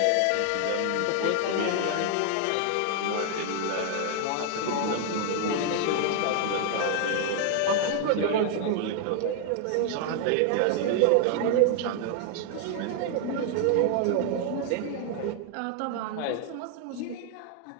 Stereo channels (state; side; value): different; both; correlation 0.00